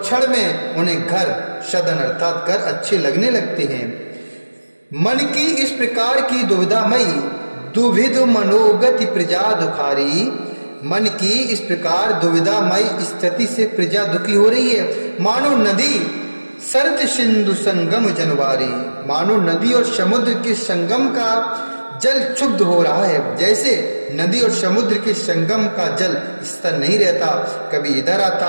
में उन्हें घर, सदन अर्थात घर अच्छे लगने लगते हैं। मन की इस प्रकार की दुविधामयी दुविध मनोगति प्रजा दुखारी। मन की इस प्रकार दुविधामय स्थिति से प्रजा दुखी हो रही है। मानो नदी सरत सिंधु संगम जनवारी, मानो नदी और समुद्र के संगम का जल क्षुब्ध हो रहा है। जैसे नदी और समुद्र के संगम का जल स्थिर नहीं रहता, कभी इधर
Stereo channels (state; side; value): inverted; both; correlation -1.00